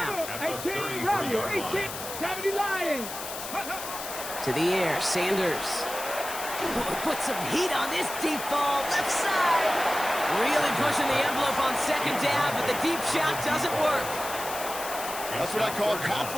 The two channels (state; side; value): noise; left; hiss, 8 dB below the sound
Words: 18, Romeo, 18, 70 Lions. To the air, Sanders. Put some heat on this deep ball, left side. Really pushing the envelope on second down, but the deep shot doesn't work. That's what I call